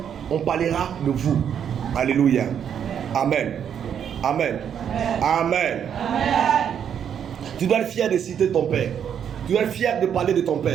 on parlera de vous. Alléluia. Amen. Amen. Amen. Tu dois être fier de citer ton père. Tu dois être fier de parler de ton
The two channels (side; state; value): left; quieter; 8.5 dB